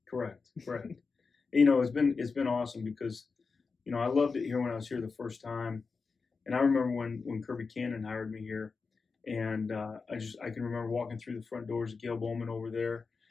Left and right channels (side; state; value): right; quieter; 4.7 dB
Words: Correct. It's been awesome because, I loved it here when I was here the first time, and I remember when Kirby Cannon hired me here, and I can remember walking through the front doors of Gail Bowman over there,